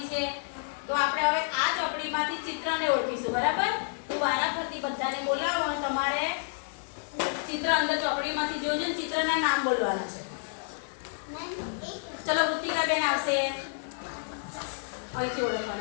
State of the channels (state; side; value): silent; right; digital silence